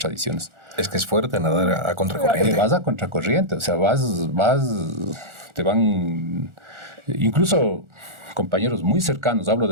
Es que es fuerte nadar a contracorriente. Vas a contracorriente, o sea, te van, incluso compañeros muy cercanos, hablo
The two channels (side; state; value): left; late; 1.4 ms